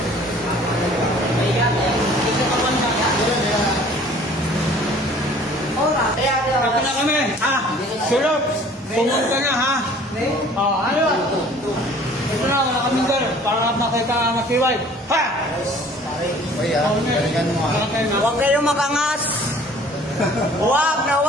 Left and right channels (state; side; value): normal; both; correlation 0.52